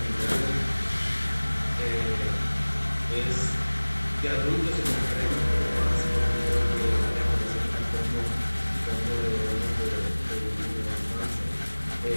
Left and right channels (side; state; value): both; inverted; correlation -1.00